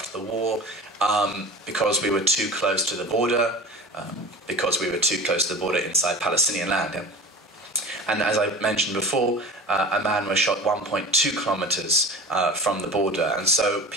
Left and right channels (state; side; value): normal; both; correlation 0.36